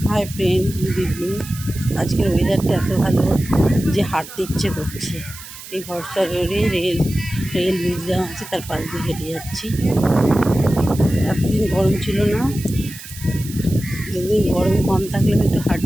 friend, good evening. আজকের ওয়েদারটা এত ভালো যে হাঁটতে ইচ্ছে করছে। এই ভরসা রোডে রেল মিউজিয়াম আছে, তার পাশ দিয়ে হেঁটে যাচ্ছি। এতদিন গরম ছিল না, যেদিন গরম কম থাকলে আমি একটু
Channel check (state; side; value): noise; right; hiss, 14 dB below the sound